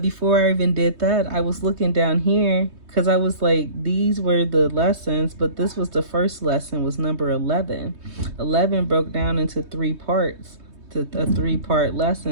before I even did that, I was looking down here, because I was like, these were the lessons, but this was the first lesson, was number 11. 11 broke down into 3 parts, to a 3-part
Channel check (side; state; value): left; late; 3.2 ms